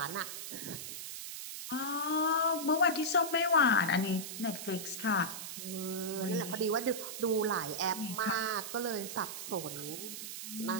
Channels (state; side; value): noise; right; hiss, 7 dB below the sound